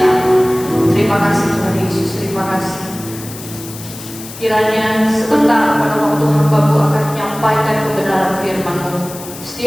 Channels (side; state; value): left; noise; hiss, 14 dB below the sound